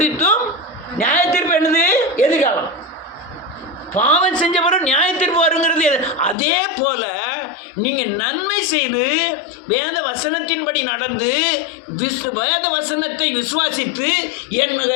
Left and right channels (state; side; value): drops out; right; at 6.4 s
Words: நியாயத்தீர்ப்பு என்னது? எதிர்காலம். பாவம் செஞ்ச பிறகு நியாயத்தீர்ப்பு வருங்கிறது. அதே போல நீங்கள் நன்மை செய்து வேத வசனத்தின்படி நடந்து வேத வசனத்தை விசுவாசித்து